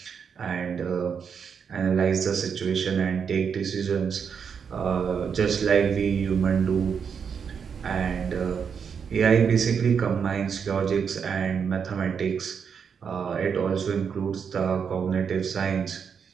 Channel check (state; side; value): quieter; left; 6.7 dB